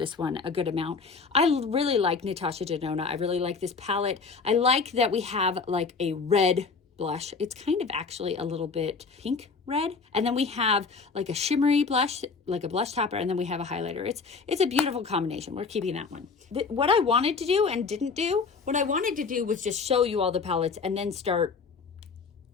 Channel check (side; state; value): right; quieter; 4.8 dB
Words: one a good amount. I really like Natasha Denona. I really like this palette. I like that we have like a red blush. It's kind of actually a little bit pink red. And then we have like a shimmery blush, like a blush topper, and then we have a highlighter. It's a beautiful combination. We're keeping that one. What I wanted to do and didn't do, what I wanted to do was just show you all the palettes and then start,